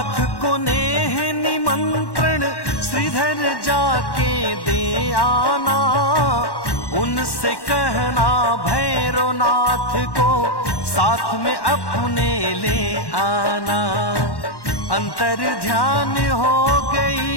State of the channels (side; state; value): right; late; 1.1 ms